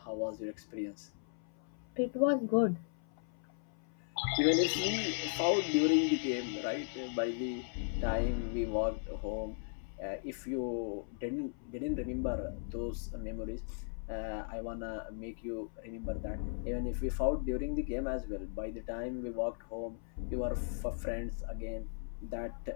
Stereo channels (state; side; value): silent; right; 53 dB below the other